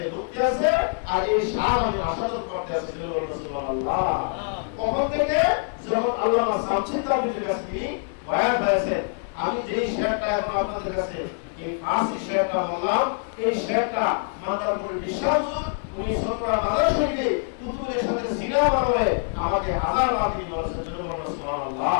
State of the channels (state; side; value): silent; right; 62 dB below the other